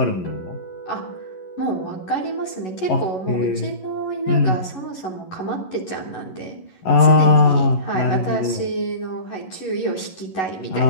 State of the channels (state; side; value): late; right; 11 ms